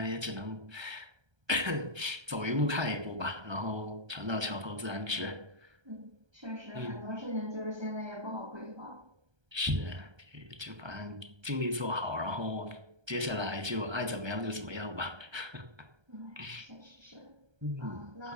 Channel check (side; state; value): left; late; 1.3 ms